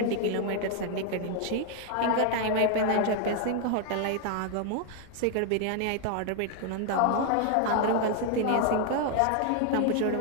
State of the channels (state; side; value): different; both; correlation 0.00